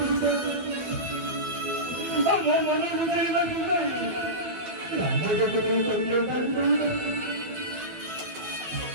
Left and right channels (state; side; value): late; left; 12 ms